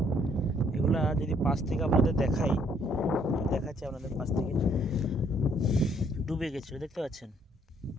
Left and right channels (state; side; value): normal; both; correlation 0.66